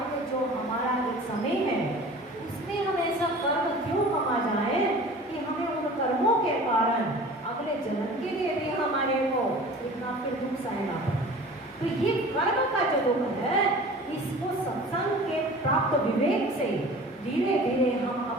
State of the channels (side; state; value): both; normal; correlation 0.42